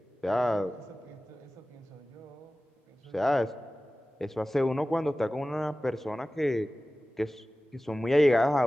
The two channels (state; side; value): normal; both; correlation 0.96